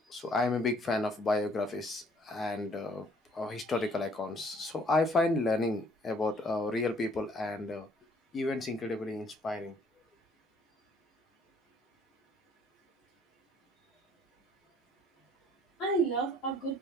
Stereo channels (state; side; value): normal; both; correlation 0.61